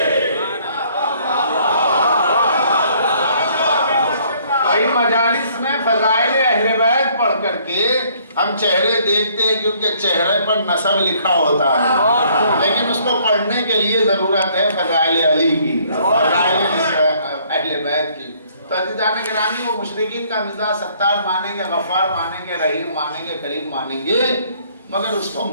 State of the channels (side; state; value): both; inverted; correlation -0.62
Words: ہم چہرے دیکھتے ہیں کیونکہ چہرے پر نسب لکھا ہوتا ہے، لیکن اس کو پڑھنے کے لیے ضرورت ہے فضائل علی کی، فضائل اہل بیت کی۔ تو عزیزان گرامی، وہ مشرکین کا مزاج ستار مانیں گے، غفار مانیں گے، رحیم مانیں گے، کریم مانیں گے، مگر اس کو